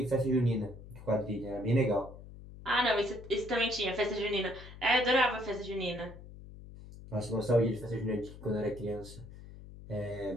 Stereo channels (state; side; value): noise; left; hum, 16 dB below the sound